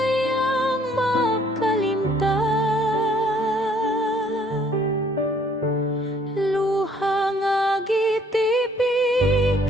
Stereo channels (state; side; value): normal; both; correlation 0.61